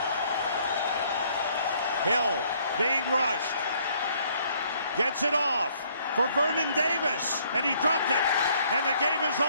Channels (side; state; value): both; inverted; correlation -0.64